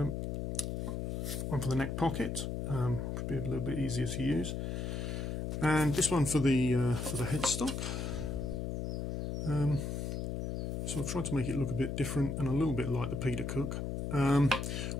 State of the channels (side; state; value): left; noise; hum, 2 dB below the sound